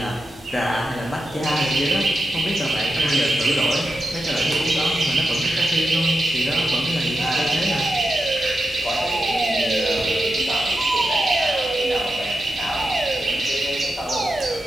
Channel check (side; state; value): both; normal; correlation 0.89